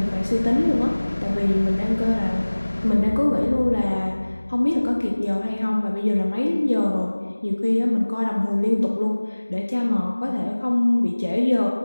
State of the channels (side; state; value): both; inverted; correlation -1.00